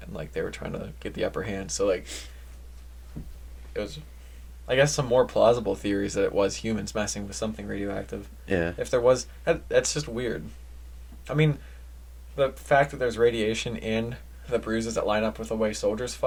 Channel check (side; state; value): both; identical; correlation 1.00